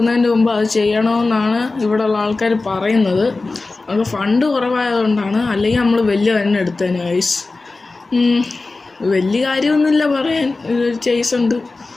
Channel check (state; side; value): quieter; right; 3.5 dB